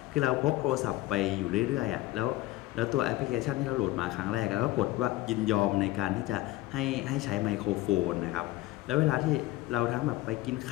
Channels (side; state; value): right; quieter; 17.4 dB